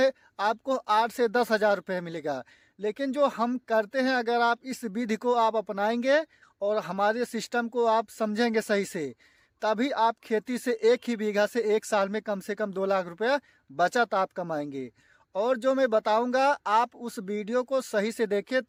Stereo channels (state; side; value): identical; both; correlation 1.00